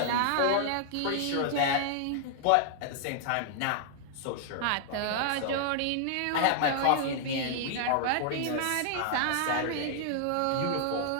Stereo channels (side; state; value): both; different; correlation -0.01